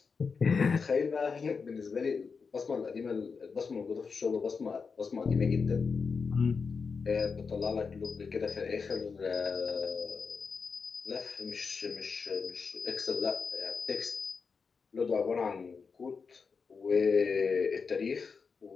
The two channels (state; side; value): quieter; right; 5.2 dB